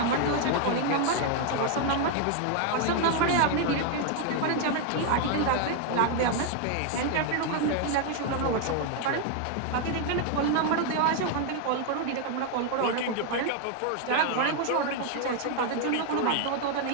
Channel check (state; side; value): different; both; correlation 0.00